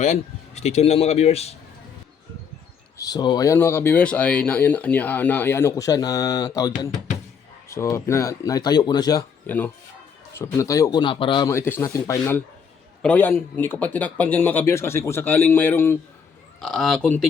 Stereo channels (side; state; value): right; quieter; 6.6 dB